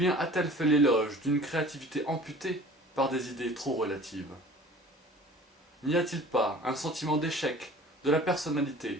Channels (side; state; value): both; normal; correlation 0.45